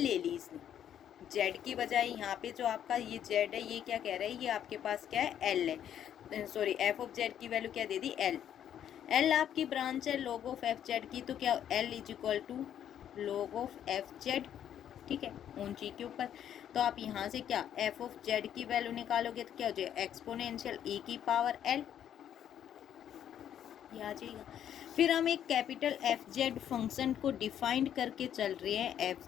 ली इसने, जेड की बजाय। यहाँ पे जो आपका ये जेड है, ये क्या कह रहा है, ये आपके पास क्या है, एल है, सॉरी एफ ऑफ जेड की वैल्यू क्या दे दी, एल। एल आपकी ब्रांच है लॉग ऑफ एफ जेड की, तो क्या l is equal to log of f z. ठीक है, ऑन जी के ऊपर। तो आप यहाँ से क्या, एफ ऑफ जेड की वैल्यू निकालोगे तो क्या हो जाएगा, एक्सपोनेंशियल ई की पावर एल, ये आ जाएगा। फिर हम एक कैपिटल एफ जेड फंक्शन को डिफाइंड करके चल रहे हैं।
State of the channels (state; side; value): quieter; right; 10.0 dB